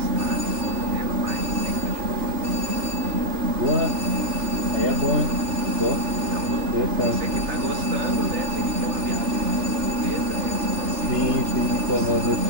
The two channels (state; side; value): late; left; 3.3 ms